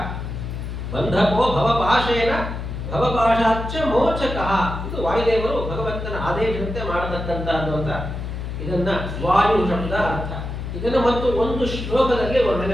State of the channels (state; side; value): noise; left; hum, 6 dB below the sound